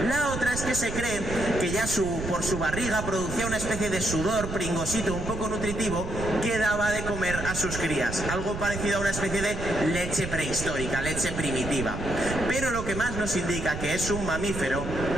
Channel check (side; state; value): right; noise; rumble, 6 dB below the sound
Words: La otra es que se cree que ya por su barriga producía una especie de sudor pringosito un poco nutritivo que daba de comer a sus crías. Algo parecido a una especie de leche prehistórica, leche primitiva. Pero lo que más nos indica que es un mamífero